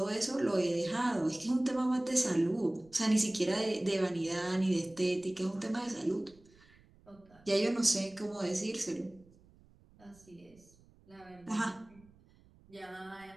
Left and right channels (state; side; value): noise; right; rumble, 27 dB below the sound